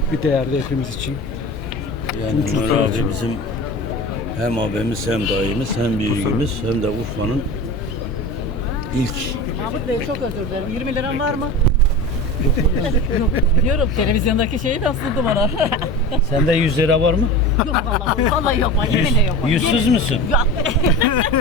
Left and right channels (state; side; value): normal; both; correlation 0.31